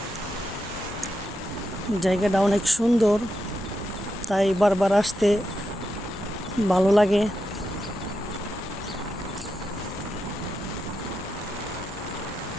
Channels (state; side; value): normal; both; correlation 0.86